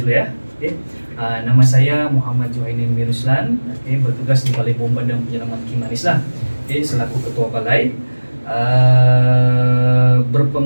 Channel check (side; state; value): both; inverted; correlation -1.00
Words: ya. Okey. Nama saya Muhammad Johainin Miruslan, bertugas di Balai Bomba dan Penyelaman Kimanis lah. Selaku ketua balai.